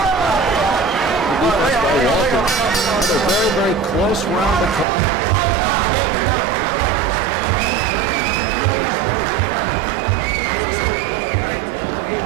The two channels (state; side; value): drops out; left; at 4.9 s